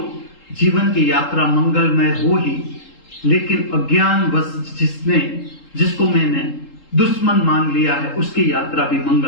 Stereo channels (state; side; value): late; right; 3.7 ms